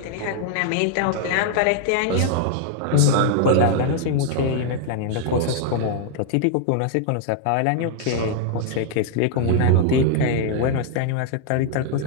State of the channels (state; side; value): different; both; correlation 0.00